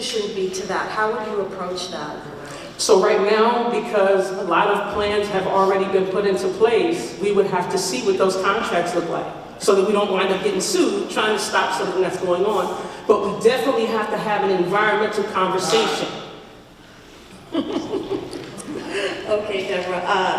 be to that? How would you approach that? So right now, because a lot of plans have already been put into place, we would have to see what those contracts look like so that we don't wind up getting sued trying to stop something that's going on. But we definitely have to have an environmental conversation. Okay,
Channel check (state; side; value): identical; both; correlation 1.00